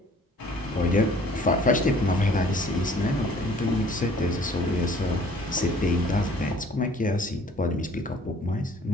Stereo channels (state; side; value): normal; both; correlation 0.54